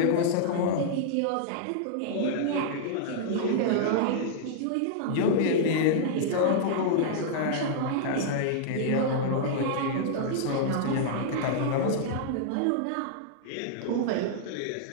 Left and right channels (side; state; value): both; different; correlation -0.01